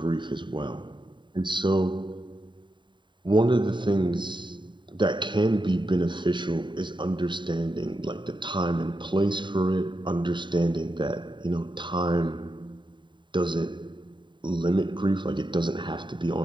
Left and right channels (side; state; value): left; late; 0.23 ms